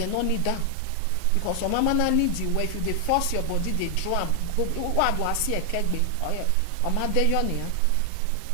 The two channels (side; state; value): both; different; correlation 0.00